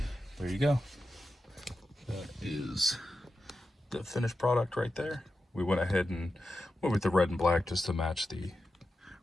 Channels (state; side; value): normal; both; correlation 0.90